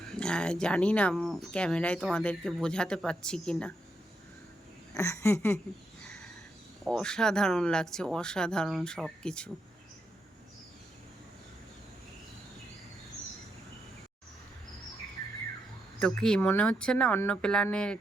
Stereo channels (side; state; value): both; normal; correlation 0.81